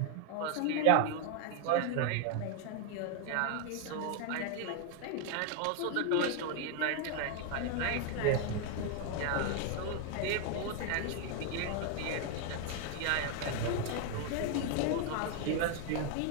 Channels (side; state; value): both; different; correlation 0.00